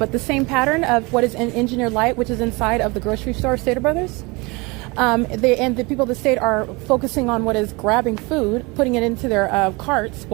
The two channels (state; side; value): quieter; left; 26.0 dB